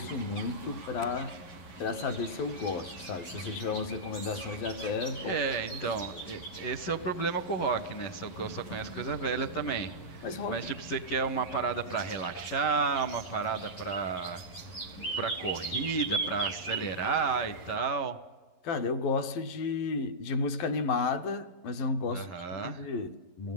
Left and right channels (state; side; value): late; right; 11 ms